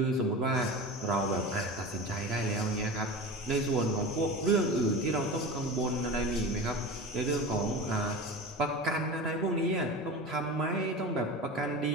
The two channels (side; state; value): both; normal; correlation 0.30